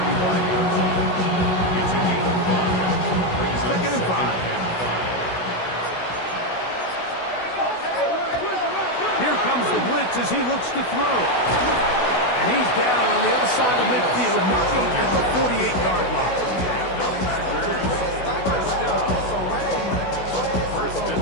It's a gain of 5. Second and 5. Here comes the blitz as he looks to throw. And he's down on the other side of midfield, marking at the 48-yard line.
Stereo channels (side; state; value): right; late; 16 ms